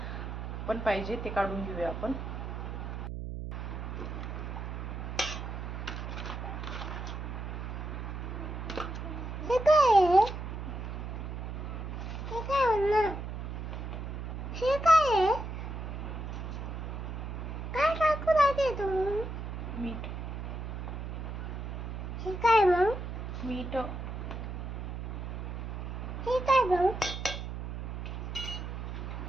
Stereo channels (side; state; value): right; noise; hum, 5 dB below the sound